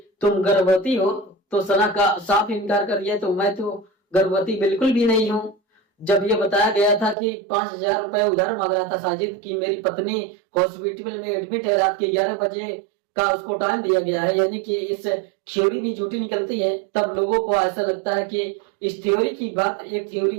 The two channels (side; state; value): left; drops out; at 7.2 s